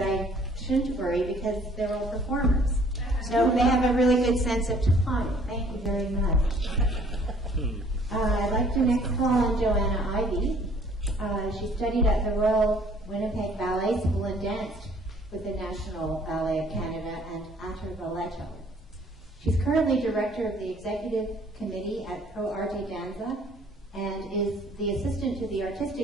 I shouldn't worry because they're all performers. So they have a really good sense of time. Thank you very much. I'd like to next call on Joanna Ivey. She studied at the Royal Winnipeg Ballet School and danced with the National Ballet of Canada and Atter Balletto. She's currently director of the executive committee at Pro Arte Danza and is the assistant to the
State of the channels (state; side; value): normal; both; correlation 0.58